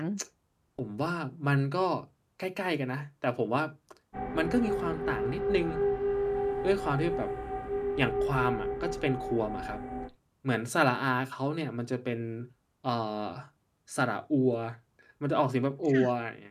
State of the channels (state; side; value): identical; both; correlation 1.00